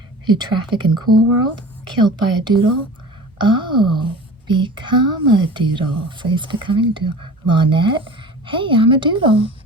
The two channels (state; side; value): normal; both; correlation 0.39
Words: who traffic in Cool World? Killed by a doodle? Oh, become a doodle. So he's becoming a doodle. Lynette? Hey, I'm a doodle.